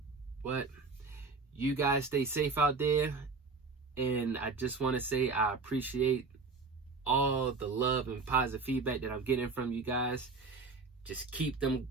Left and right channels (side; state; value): left; quieter; 4.4 dB